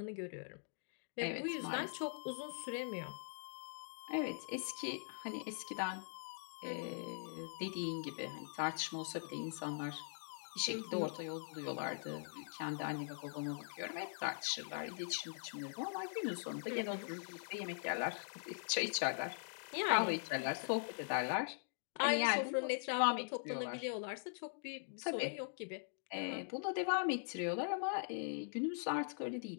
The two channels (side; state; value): right; silent; digital silence